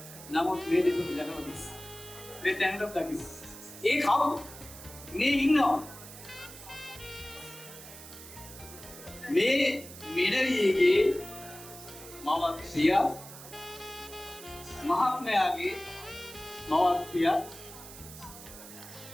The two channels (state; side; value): noise; right; hiss, 15 dB below the sound